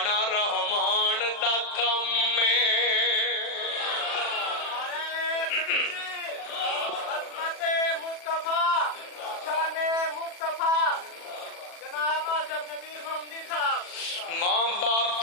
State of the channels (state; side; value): late; right; 40 ms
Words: رحمان دا کام ہے۔ ماں باپ